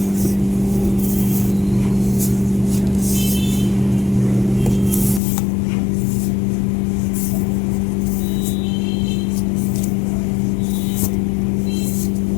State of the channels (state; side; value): drops out; right; at 5.2 s